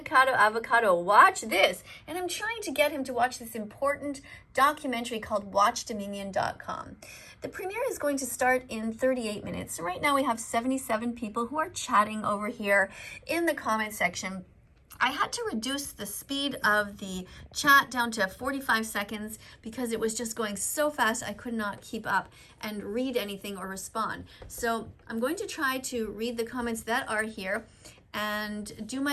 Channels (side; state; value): both; identical; correlation 1.00